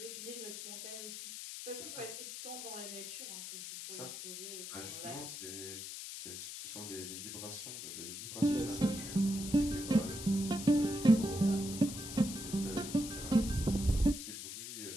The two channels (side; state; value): left; noise; hiss, 8 dB below the sound